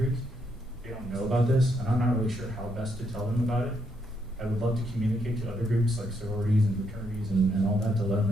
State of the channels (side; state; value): both; normal; correlation 0.76